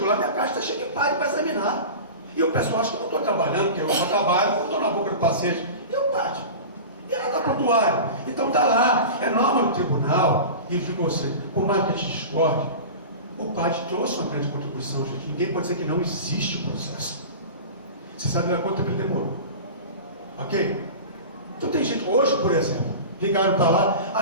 lá, minha caixa está cheia de padre para examinar. E o pessoal acha que eu não estou trabalhando, porque eu não trabalho, eu estou na boca do paciente. E o padre? E ela está prontuário. Então está lá, é norma do tribunal. E digo você, por mais que a gente discorde, o padre trouxe uma grande contribuição, gente. Ninguém pode dizer que não existe o processo. Você sabe lá quanto tempo ele demorou. Ok? Então tem gente, hoje, por exemplo, ligaram para lá,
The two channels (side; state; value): both; inverted; correlation -0.32